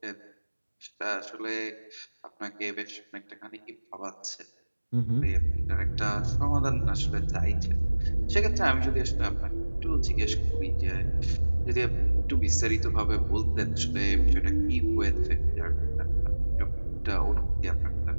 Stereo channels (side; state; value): both; inverted; correlation -1.00